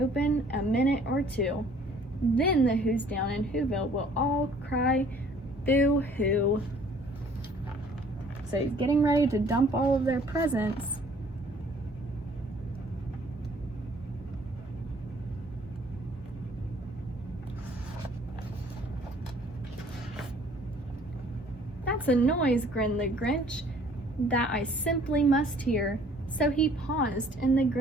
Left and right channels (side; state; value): both; normal; correlation 0.56